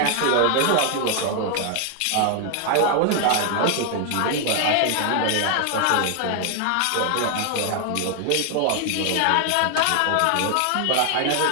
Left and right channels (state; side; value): different; both; correlation 0.00